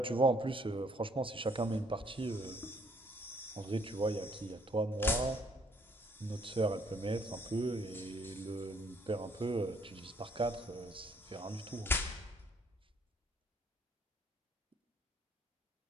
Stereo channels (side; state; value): both; normal; correlation 0.65